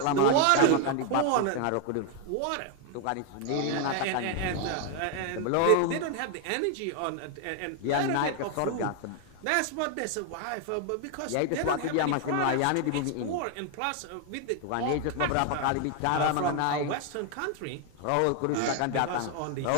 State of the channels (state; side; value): different; both; correlation 0.00